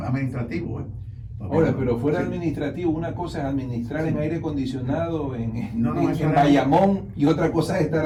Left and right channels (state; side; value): identical; both; correlation 1.00